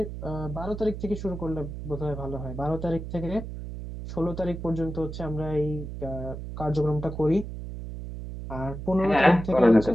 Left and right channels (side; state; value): right; noise; hum, 8 dB below the sound